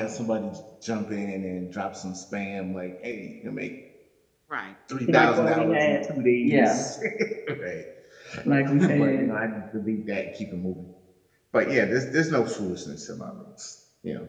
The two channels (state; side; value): identical; both; correlation 1.00